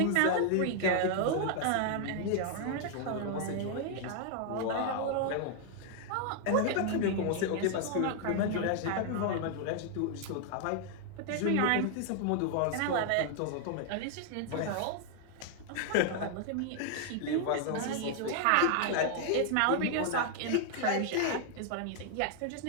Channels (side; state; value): both; different; correlation 0.00